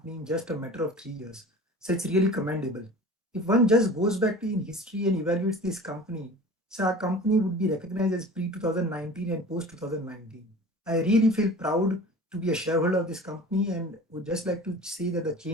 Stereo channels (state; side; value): normal; both; correlation 0.40